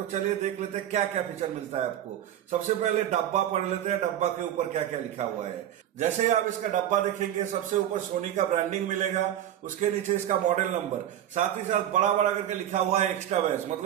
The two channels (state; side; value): quieter; left; 11.3 dB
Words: चलिए देख लेते हैं क्या क्या फीचर मिलता है आपको। सबसे पहले डब्बा पढ़ लेते हैं, डब्बा के ऊपर क्या क्या लिखा हुआ है। जैसे ही आप इसका डब्बा देखेंगे, सबसे ऊपर सोनी का ब्रांडिंग मिलेगा, उसके नीचे इसका मॉडल नंबर, साथ ही साथ बड़ा बड़ा करके लिखा हुआ है एक्स्ट्रा बेस,